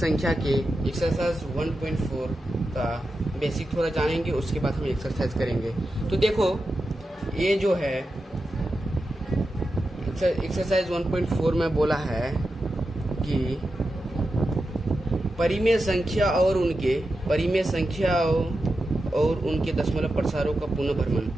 के एक्सरसाइज 1.4 का बेसिक थोड़ा जानेंगे, उसके बाद हम एक्सरसाइज करेंगे। तो देखो ये जो है एक्सरसाइज 1.4 में बोला है कि परिमेय संख्या और उनके दशमलव प्रसारों का पुनः भ्रमण।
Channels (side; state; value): both; normal; correlation 0.90